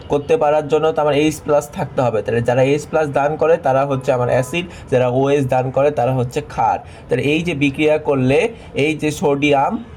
করতে পারার জন্য তো আমার H+ থাকতে হবে। তাহলে যারা H+ দান করে তারা হচ্ছে আমার অ্যাসিড, যারা OH দান করে তারা হচ্ছে ক্ষার। তাহলে এই যে বিক্রিয়া করলে এই যে সোডিয়াম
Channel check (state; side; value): identical; both; correlation 1.00